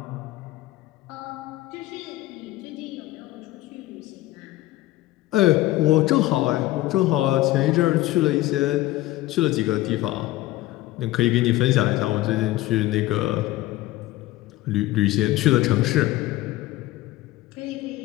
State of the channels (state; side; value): quieter; right; 16.9 dB